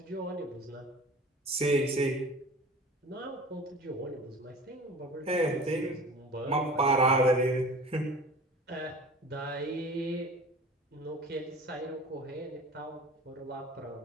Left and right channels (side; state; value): both; normal; correlation 0.40